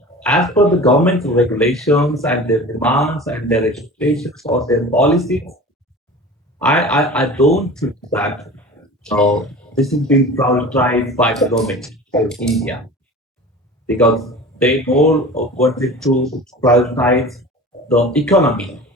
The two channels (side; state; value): both; normal; correlation 0.37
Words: as per the government regulations and their demands and their expectations or their policies, I don't think that this is being prioritized by the government of India, because they more wanted to prioritize the economy